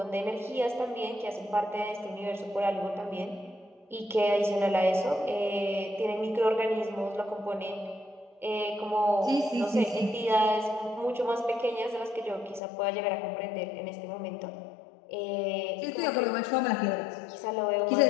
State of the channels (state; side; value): drops out; right; at 12.6 s